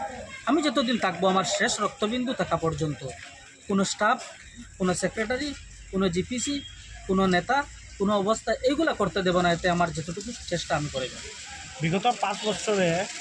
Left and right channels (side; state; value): both; identical; correlation 1.00